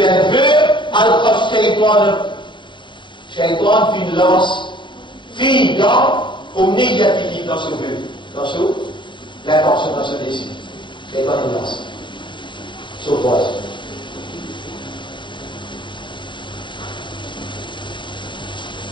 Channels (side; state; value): right; late; 0.23 ms